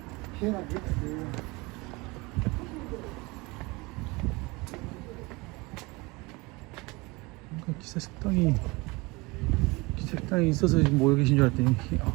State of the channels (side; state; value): left; quieter; 24.7 dB